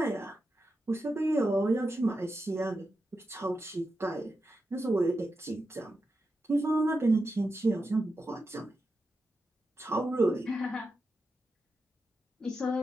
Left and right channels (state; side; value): normal; both; correlation 0.89